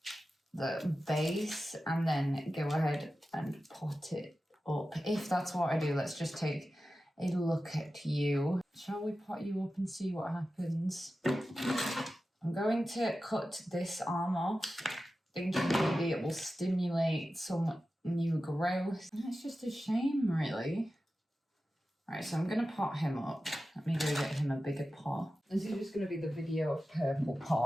the base and then go ahead and pot it up. If that's what I do, let's just take a look at you. Shall we pot you up and see what happens? I'm going to cut this arm off, thinking maybe it will stimulate some new growth. It's just a shame, really. Right, so I'm going to pot him up. Let me go get him a bigger pot. This is just going to be the video of purple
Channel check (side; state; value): both; normal; correlation 0.94